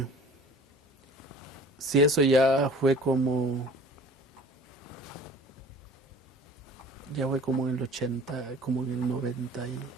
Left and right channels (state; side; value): normal; both; correlation 0.46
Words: eso ya fue como en el 80, como en el 90 y